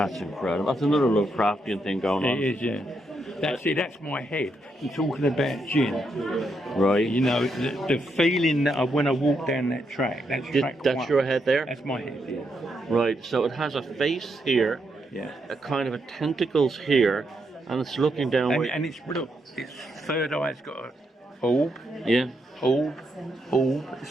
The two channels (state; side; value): normal; both; correlation 0.80